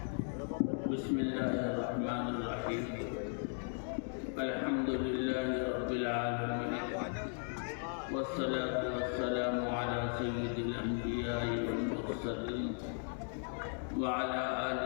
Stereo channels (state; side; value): silent; right; 53 dB below the other